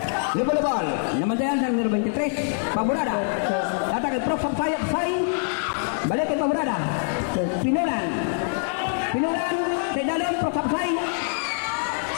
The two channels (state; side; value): silent; right; 62 dB below the other